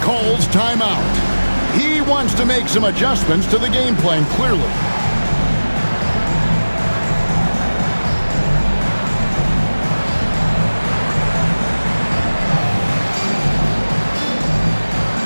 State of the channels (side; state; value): both; inverted; correlation -1.00